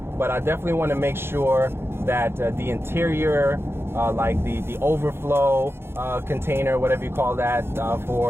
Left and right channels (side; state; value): left; late; 0.11 ms